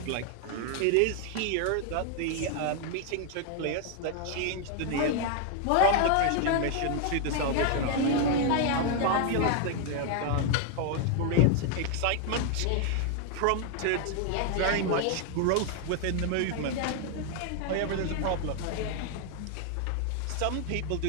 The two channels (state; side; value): different; both; correlation 0.00